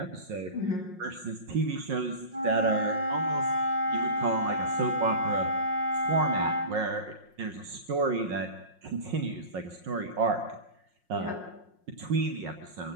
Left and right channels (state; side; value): late; left; 5.6 ms